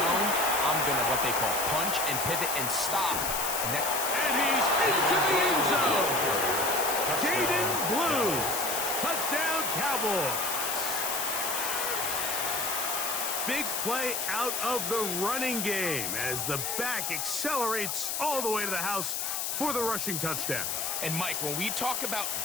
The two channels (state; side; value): noise; left; hiss, 1 dB below the sound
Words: I'm going to what they call punch and pivot and stop. And he's into the end zone. Jaden Blue. Touchdown, Cowboys. Big play out of the running game as the back accelerates all the way to the house for the rushing touchdown. And Mike, when we talk about